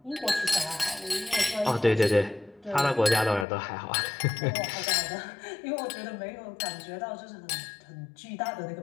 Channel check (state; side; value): drops out; right; at 3.5 s